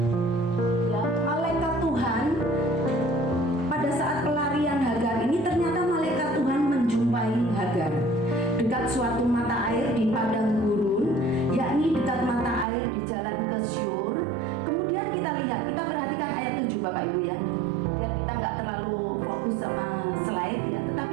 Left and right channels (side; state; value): left; drops out; at 12.7 s